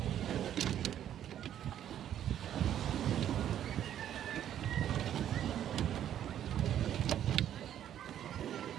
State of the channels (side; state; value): left; quieter; 10.6 dB